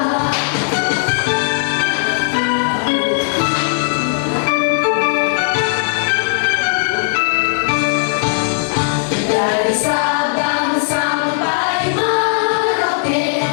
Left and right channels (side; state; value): right; silent; 56 dB below the other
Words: Dari Sabang sampai Merauke